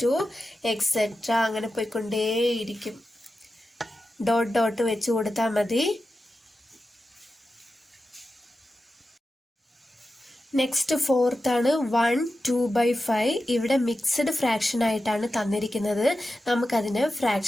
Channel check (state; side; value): normal; both; correlation 0.92